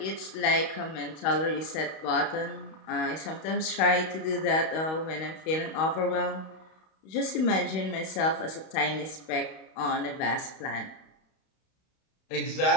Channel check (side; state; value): right; late; 32 ms